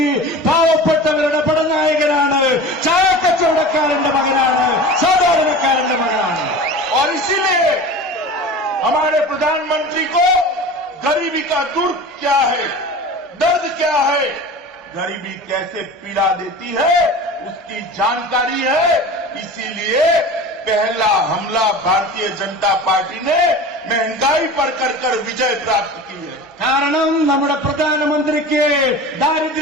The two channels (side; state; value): both; normal; correlation 0.35